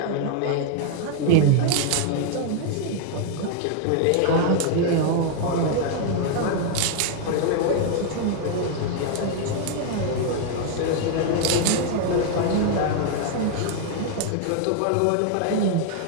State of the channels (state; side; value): different; both; correlation 0.00